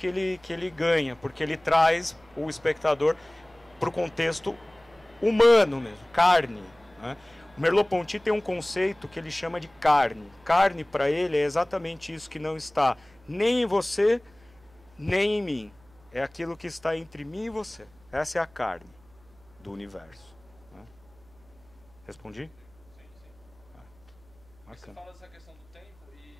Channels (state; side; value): noise; right; hum, 28 dB below the sound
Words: ele ganha, porque ele traz o espectador para o contexto humano mesmo, carne, né? O Merleau-Ponty tem um conceito que ele chama de carne. Carne, para ele, é exatamente isso que não está nem em você, nem em mim. É aquilo que está entre mim e você. Essa é a carne do universo, né? Respondi? Sim, sim. Você fala dessa questão do tempo